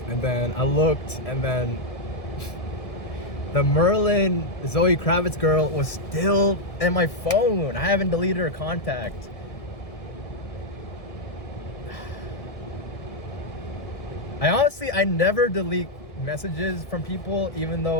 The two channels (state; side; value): late; right; 1.6 ms